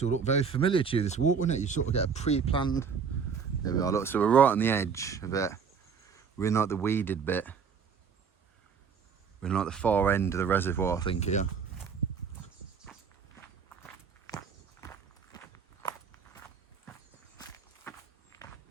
will look very familiar to you, this walk, won't it? You sort of get a pre-planned... There we are, look, so we're right on the edge of it. We're in like the weeded bit. We're in like the far end of the reservoir, I think, here.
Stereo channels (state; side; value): quieter; left; 6.2 dB